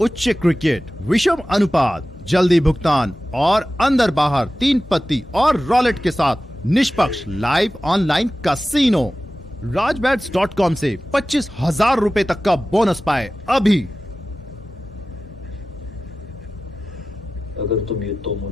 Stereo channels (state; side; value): normal; both; correlation 0.95